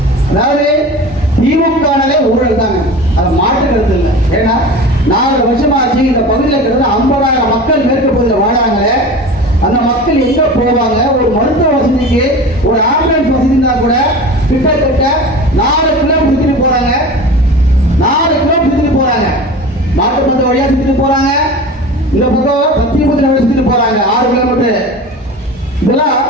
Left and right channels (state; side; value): normal; both; correlation 0.34